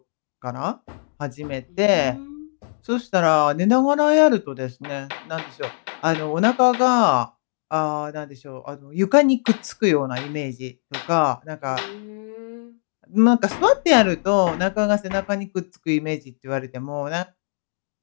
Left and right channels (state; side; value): silent; right; digital silence